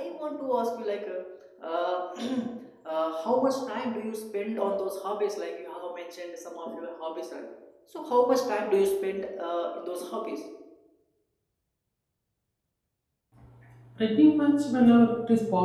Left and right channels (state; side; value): identical; both; correlation 1.00